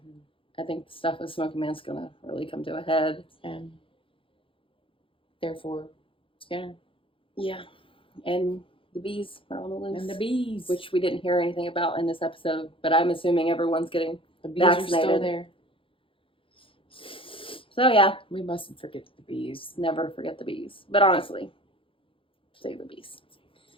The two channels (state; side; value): late; right; 0.26 ms